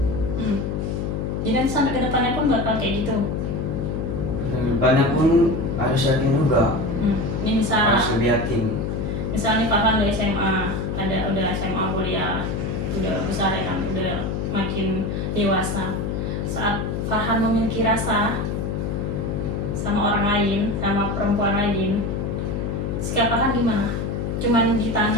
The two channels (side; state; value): left; noise; hum, 2 dB below the sound